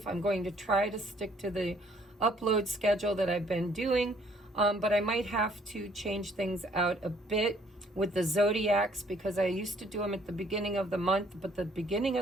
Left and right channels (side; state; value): both; normal; correlation 0.62